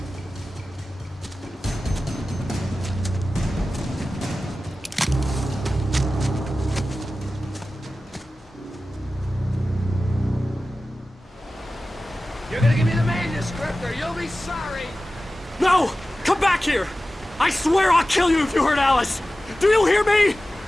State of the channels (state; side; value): normal; both; correlation 0.95